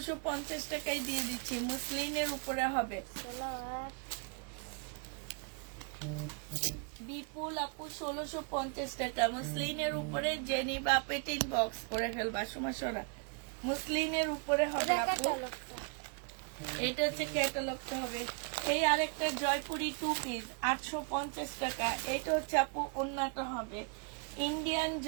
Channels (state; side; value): quieter; left; 36.5 dB